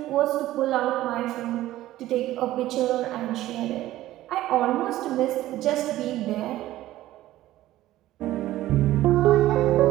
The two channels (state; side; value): quieter; left; 15.0 dB